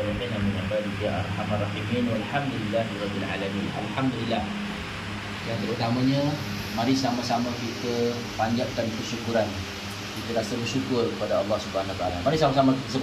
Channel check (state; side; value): identical; both; correlation 1.00